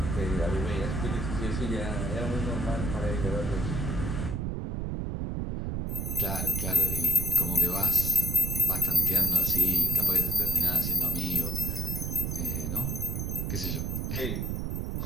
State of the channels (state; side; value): noise; right; rumble, 2 dB below the sound